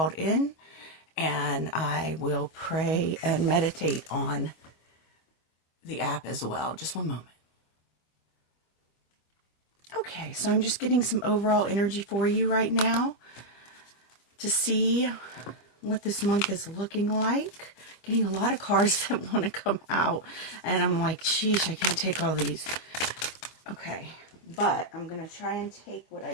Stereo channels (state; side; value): late; right; 25 ms